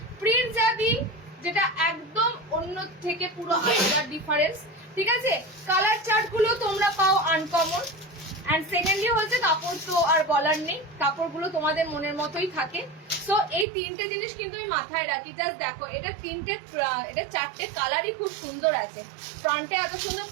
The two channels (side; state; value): left; drops out; at 13.7 s